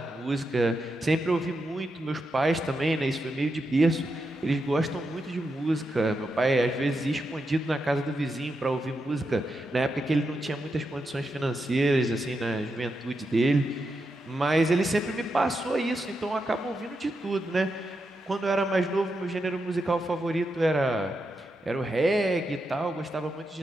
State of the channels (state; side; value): normal; both; correlation 0.86